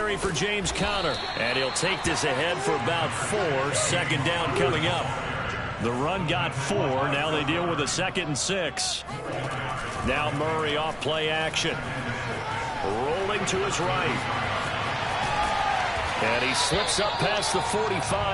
for James Conner. And he'll take this ahead for about 4. Second down coming up. The run got 4. Now they deal with a 2nd and 6. Now Murray off play action. Rolling to his right. And he slips up past the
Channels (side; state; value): both; identical; correlation 1.00